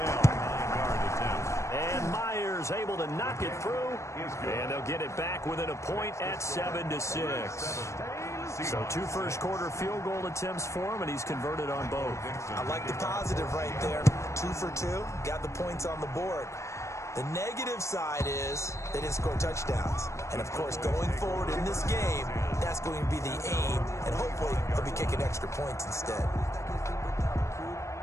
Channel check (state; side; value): late; right; 0.14 ms